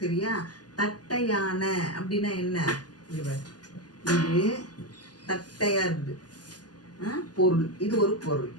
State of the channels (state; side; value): late; right; 0.69 ms